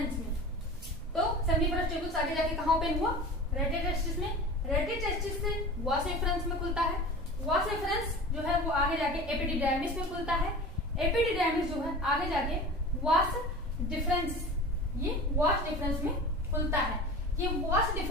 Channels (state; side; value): noise; right; rumble, 12 dB below the sound